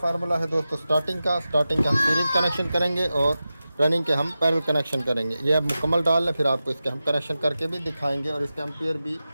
है दोस्तों स्टार्टिंग का हम सीरीज कनेक्शन करेंगे और रनिंग के हम पैरेलल कनेक्शन करेंगे। ये अब मुकम्मल डाल लें, फिर आपको इसके हम कनेक्शन करके भी दिखाएंगे और इसके एम्पियर भी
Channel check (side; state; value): both; inverted; correlation -0.93